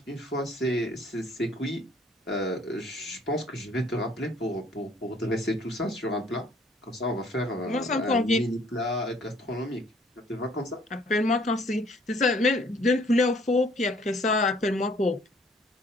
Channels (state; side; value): normal; both; correlation 0.59